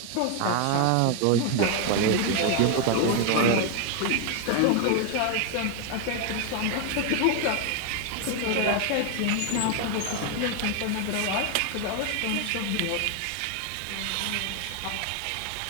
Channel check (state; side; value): different; both; correlation 0.01